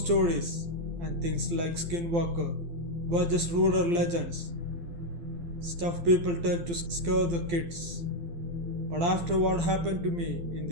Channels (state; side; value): late; left; 12 ms